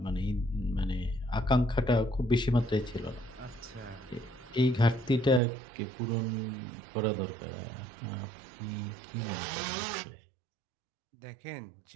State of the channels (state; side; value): drops out; left; at 5.4 s